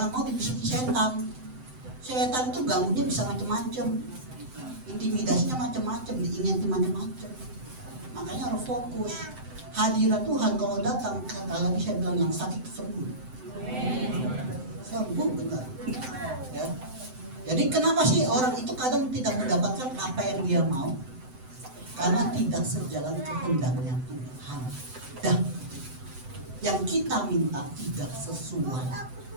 mau dibisiki setan. Setan itu ganggunya bisa macam-macam. Intimidasinya macam-macam, diingin macam-macam. Makanya harus fokus. Hadirat Tuhan kalau datang, kata lagi saya bilang yang sakit sembuh. Sembuh benar. Ya. Jadi kenapa sih orang itu kadang tidak mendapatkan apa yang dia mau? Karena tidak sejalan kehendaknya Tuhan. Dan yang kita minta tidak sesuai.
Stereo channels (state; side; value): late; left; 7.8 ms